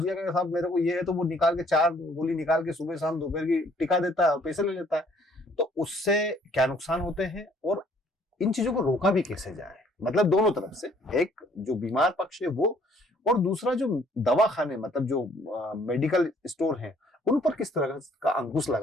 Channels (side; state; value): both; normal; correlation 0.61